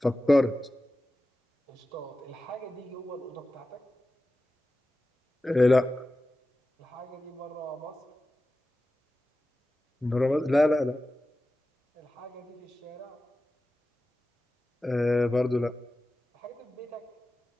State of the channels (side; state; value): both; normal; correlation 0.94